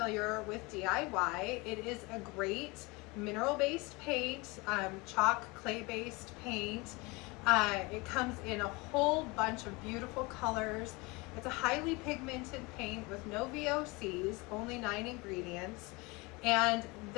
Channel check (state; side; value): quieter; right; 25.5 dB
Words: with DIY, it is a great mineral-based paint, chalk, clay-based paint. It comes in a whole bunch of beautiful colors. It's a highly pigmented paint with no VOCs, only 9 ingredients. And